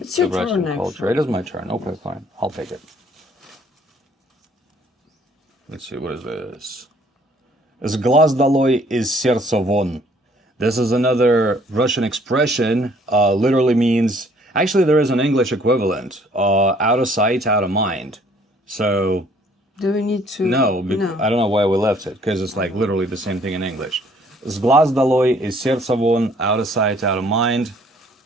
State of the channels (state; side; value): normal; both; correlation 0.60